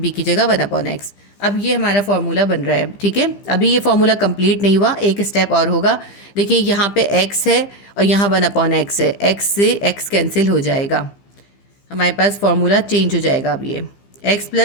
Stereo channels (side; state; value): right; late; 15 ms